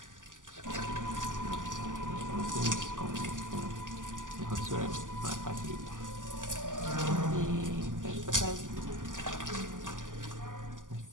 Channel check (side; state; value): left; late; 0.88 ms